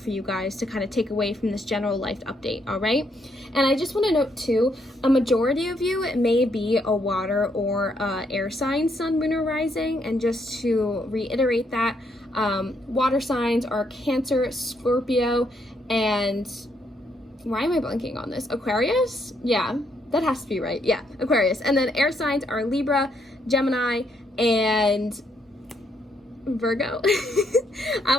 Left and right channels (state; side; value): normal; both; correlation 0.74